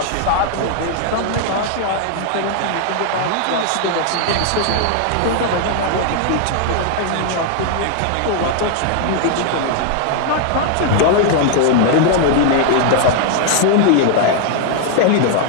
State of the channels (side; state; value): both; different; correlation 0.00